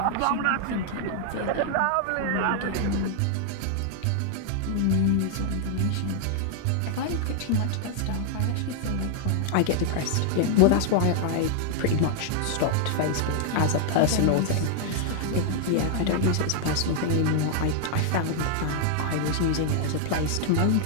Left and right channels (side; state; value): both; different; correlation 0.00